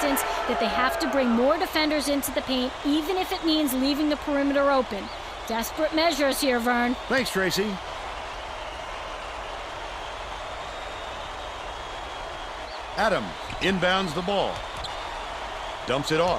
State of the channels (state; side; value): identical; both; correlation 1.00